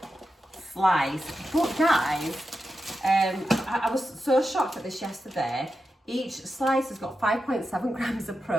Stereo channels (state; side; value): normal; both; correlation 0.89